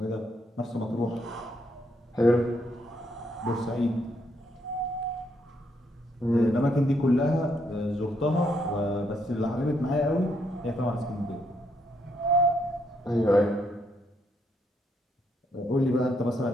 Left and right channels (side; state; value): both; normal; correlation 0.74